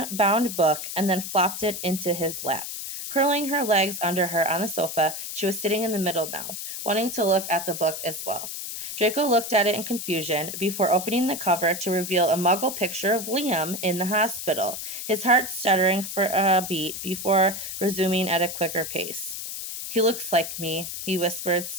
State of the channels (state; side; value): noise; left; hiss, 7 dB below the sound